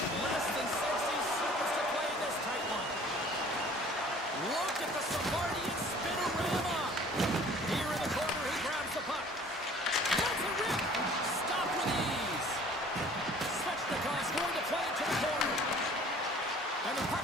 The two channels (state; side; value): normal; both; correlation 0.51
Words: Less than 60 seconds to play in this tight one. Look at the Savardian spinorama. Here in the corner, he grabs the puck. That's a rip. Stop with ease. Svechnikov's going to play it to the corner. And the